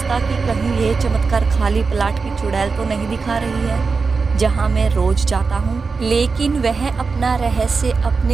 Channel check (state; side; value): quieter; left; 4.7 dB